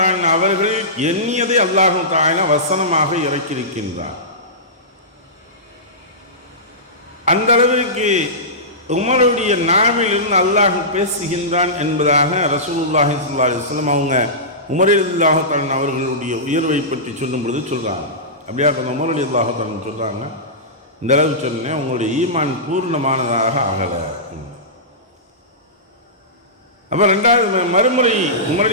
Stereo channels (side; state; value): both; normal; correlation -0.18